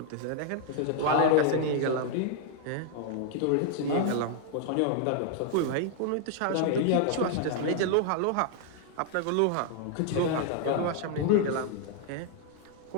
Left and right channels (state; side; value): different; both; correlation 0.00